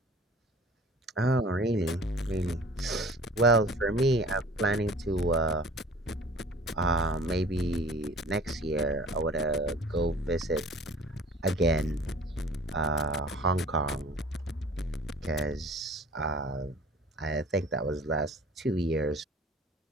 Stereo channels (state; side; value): normal; both; correlation 0.47